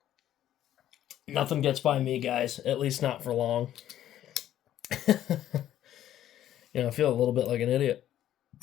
Nothing gets by me, guys. At least not for long. I feel a little bit like an idiot.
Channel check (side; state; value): right; quieter; 11.9 dB